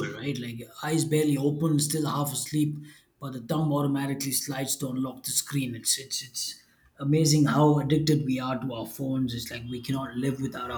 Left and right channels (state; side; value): identical; both; correlation 1.00